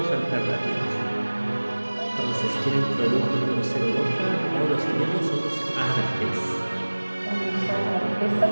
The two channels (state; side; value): inverted; both; correlation -1.00